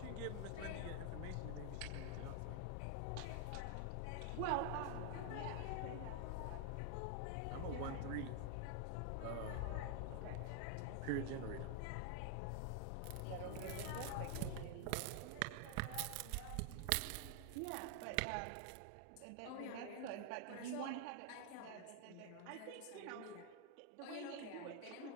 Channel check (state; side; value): different; both; correlation 0.00